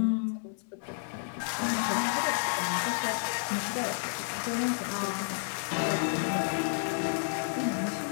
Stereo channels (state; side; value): silent; right; 57 dB below the other